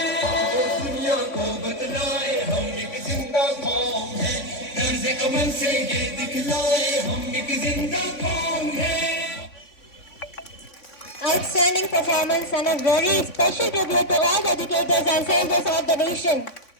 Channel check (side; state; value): right; late; 3.6 ms